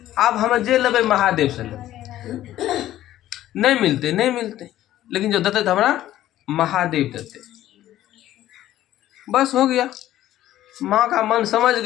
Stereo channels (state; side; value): quieter; right; 13.5 dB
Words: आब हम जे लेबै महादेव से लेबै, नहीं मिलते नहीं मिलते, लेकिन जो देते थे हमारा महादेव देते। बस हो गया। माँ का मन समझ